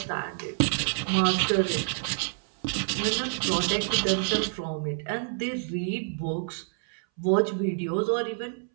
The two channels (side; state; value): left; silent; 60 dB below the other